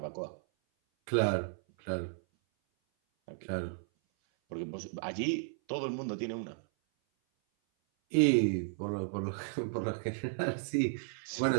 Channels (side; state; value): left; silent; 55 dB below the other